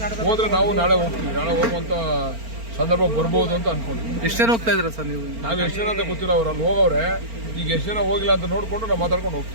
ಹೋದ್ರೆ ನಾವು ನಾಳೆ ಹೋಗ್ತೀವಿ, ನಾಳೆ ಹೋಗುವಂತ ಸಂದರ್ಭ ಬರ್ಬೋದು ಅಂತ ಅನ್ಕೊಂಡಿದ್ವಿ. ಎಷ್ಟು ಜನ ಹೋಗ್ತಾ ಇದ್ದೀರಾ ಸರ್ ನೀವು? ನಾವು ಎಷ್ಟು ಜನ ಅಂತ ಗೊತ್ತಿಲ್ಲ, ಅವ್ರು ಅಲ್ಲಿ ಹೋಗವ್ರೆ. ಈಗ ಎಷ್ಟು ಜನ ಹೋಗಿಲ್ಲ ಅಂತ ನೋಡ್ಕೊಂಡು ನಾವು ಮಾತಾಡ್ಕೊಂಡು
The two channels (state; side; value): late; left; 4.4 ms